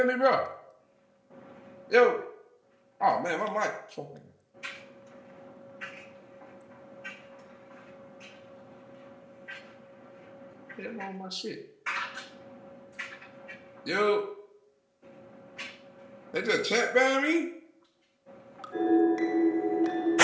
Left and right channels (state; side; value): identical; both; correlation 1.00